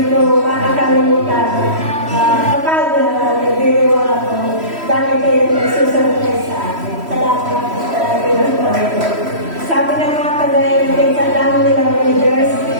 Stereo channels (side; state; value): left; late; 3.1 ms